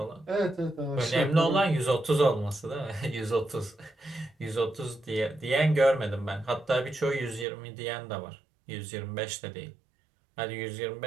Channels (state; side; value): drops out; left; at 7.5 s